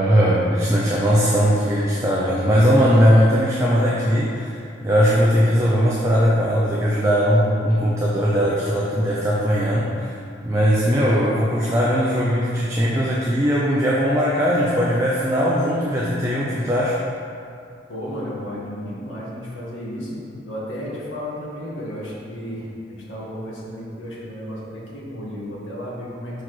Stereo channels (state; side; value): normal; both; correlation 0.71